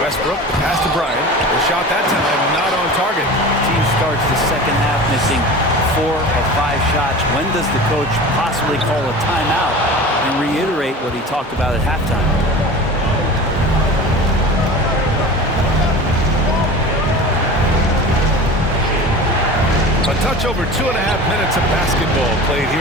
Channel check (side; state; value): both; normal; correlation 0.35